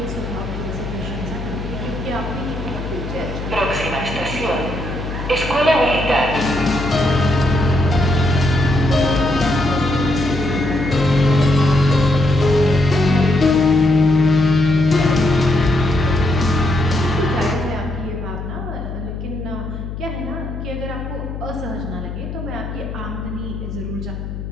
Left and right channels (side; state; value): left; noise; hum, 7 dB below the sound